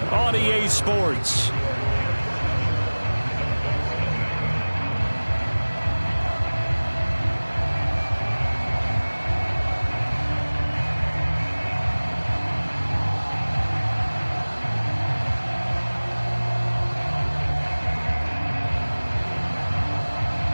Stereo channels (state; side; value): inverted; both; correlation -1.00